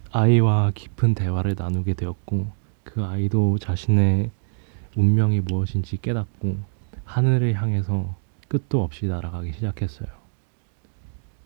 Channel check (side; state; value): left; silent; 63 dB below the other